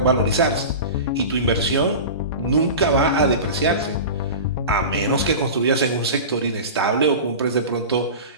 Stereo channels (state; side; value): inverted; both; correlation -0.30